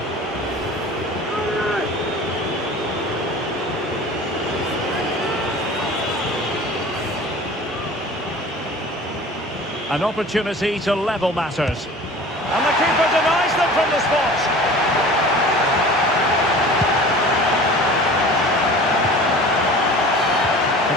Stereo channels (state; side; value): normal; both; correlation 0.41